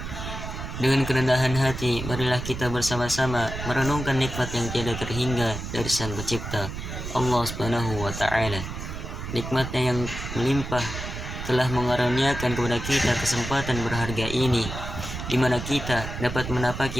Dengan kerendahan hati, marilah kita bersama-sama merenungkan nikmat yang tiada terhingga dari Sang Pencipta, Allah Subhanahu wa Ta'ala. Nikmatnya yang melimpah telah mengaruniakan kepada kita kesempatan berharga ini, di mana kita dapat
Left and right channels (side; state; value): right; noise; rumble, 7 dB below the sound